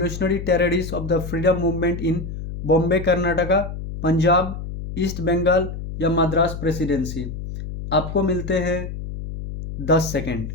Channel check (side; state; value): left; noise; hum, 8 dB below the sound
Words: terrorists of the freedom movement in Bombay, Karnataka, Punjab, east Bengal या मद्रास प्रेसिडेंसी। आपको मिलते हैं 10 सेकेंड।